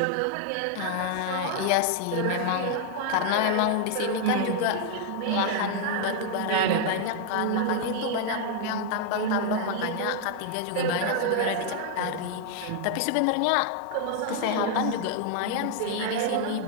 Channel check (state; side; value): different; both; correlation 0.00